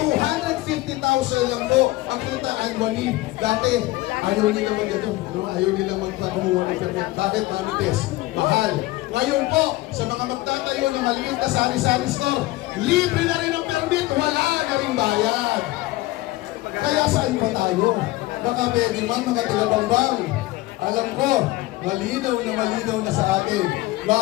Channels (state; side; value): quieter; right; 18.6 dB